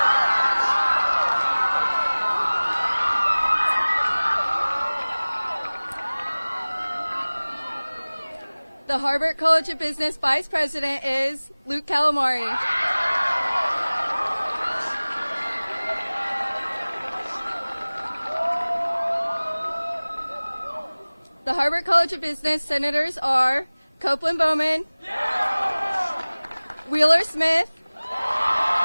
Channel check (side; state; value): both; inverted; correlation -1.00